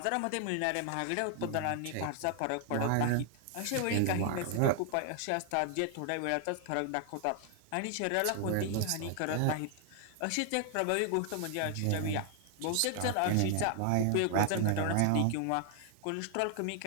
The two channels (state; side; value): different; both; correlation 0.00